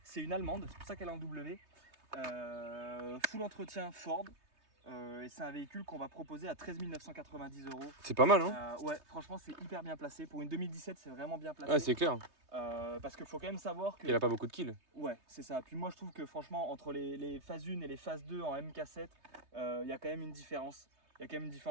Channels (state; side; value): late; left; 3.2 ms